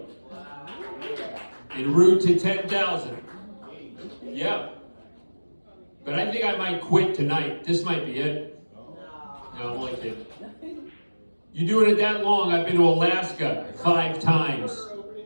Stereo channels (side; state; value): both; inverted; correlation -1.00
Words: En route to 10,000. Yeah. But I think I might quit tonight. This might be it. No, I'm only kidding. You doing it that long? I've been to Alaska 5 times.